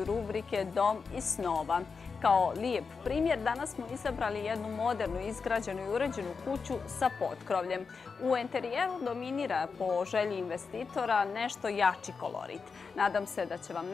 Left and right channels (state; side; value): quieter; right; 5.1 dB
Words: rubrike Dom iz snova. Kao lijep primjer, danas smo izabrali jednu modernu, izgrađenu i uređenu kuću sa potkrovljem. U enterijeru dominira po želji investitora nešto jači kolorit. Nadam se da će vam